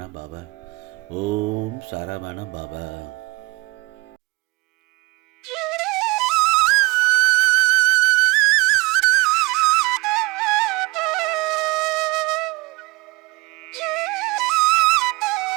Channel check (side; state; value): left; quieter; 24.1 dB